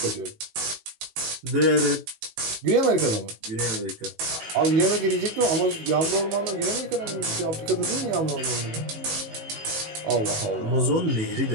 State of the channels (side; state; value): left; late; 18 ms